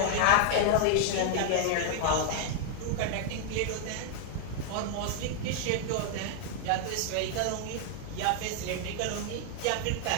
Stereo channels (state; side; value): different; both; correlation 0.00